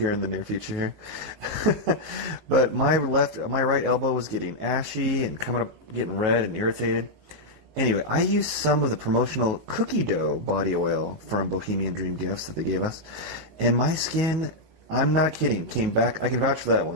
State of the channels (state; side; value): late; left; 19 ms